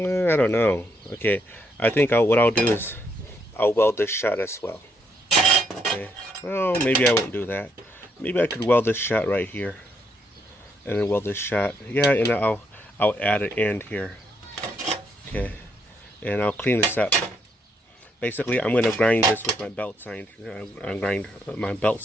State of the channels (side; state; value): both; normal; correlation 0.75